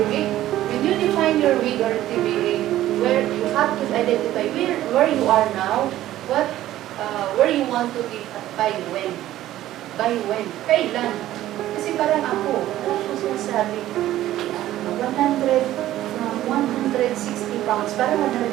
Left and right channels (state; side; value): quieter; left; 14.0 dB